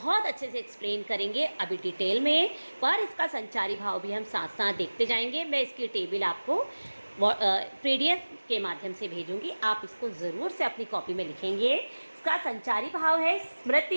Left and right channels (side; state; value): both; inverted; correlation -1.00